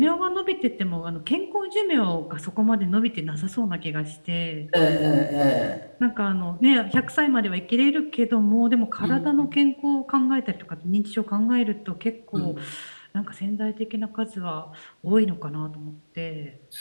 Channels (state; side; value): inverted; both; correlation -1.00